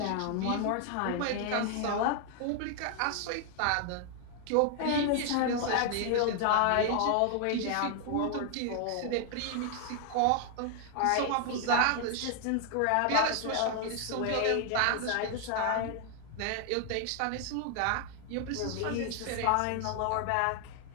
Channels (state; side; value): different; both; correlation 0.00